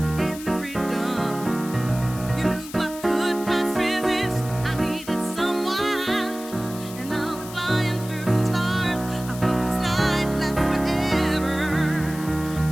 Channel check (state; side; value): noise; left; hiss, 14 dB below the sound